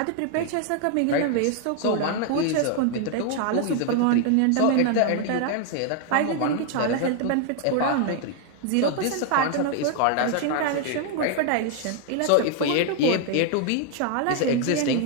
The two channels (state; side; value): different; both; correlation 0.00